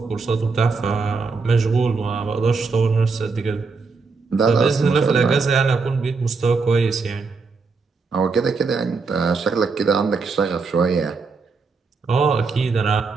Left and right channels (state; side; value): quieter; left; 4.5 dB